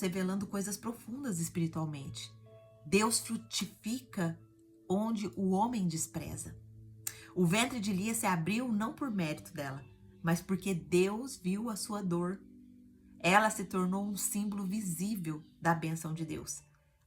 revelando coisas profundas espiritualmente. Deus frutifica onde o homem despreza. O ventre de Lia se abriu não por mérito dela, mas porque Deus viu a sua dor. Ela se tornou um símbolo visível da bênção de Deus,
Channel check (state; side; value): identical; both; correlation 1.00